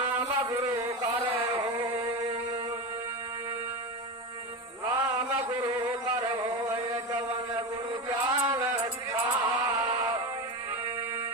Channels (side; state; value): both; normal; correlation 0.20